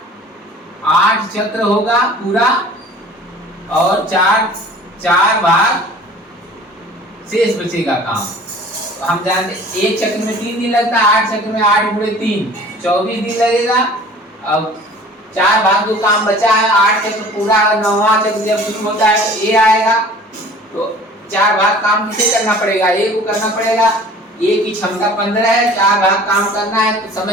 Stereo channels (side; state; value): both; normal; correlation 0.46